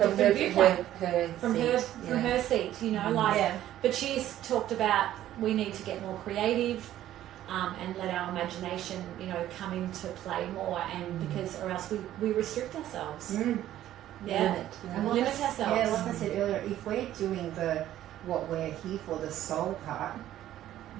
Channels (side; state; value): left; quieter; 12.8 dB